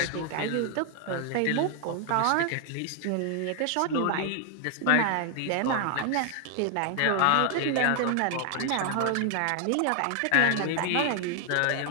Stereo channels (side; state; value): both; different; correlation 0.00